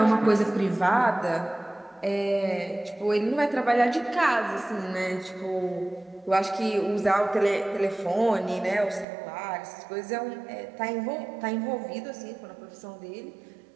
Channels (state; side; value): drops out; left; at 9.1 s